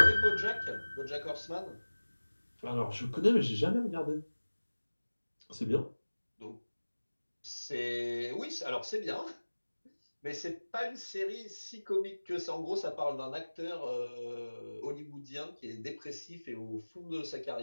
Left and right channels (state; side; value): inverted; both; correlation -1.00